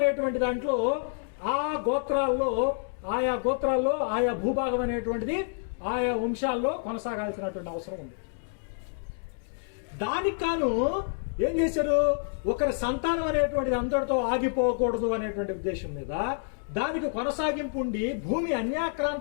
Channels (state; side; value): silent; right; digital silence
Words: దాంట్లో ఆయా గోత్రాల్లో ఆయా భూభాగం అనేటువంటిది ఆయా వంశాల్లో కొనసాగాల్సినటువంటి అవసరం ఉంది. దానికి కాను ఏం చేశారు? ఒకరి సంతానం అనేటువంటిది అందరితో ఆగిపోకూడదు అనేటువంటి ఉద్దేశం మీద దానికి కొనసాగింపు ఉండి భూమి